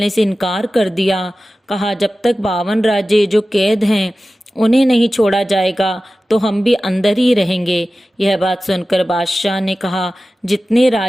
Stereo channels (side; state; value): both; normal; correlation 0.95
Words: से इनकार कर दिया। कहा, जब तक 52 राजे जो कैद हैं उन्हें नहीं छोड़ा जाएगा तो हम भी अंदर ही रहेंगे। यह बात सुनकर बादशाह ने कहा, जितने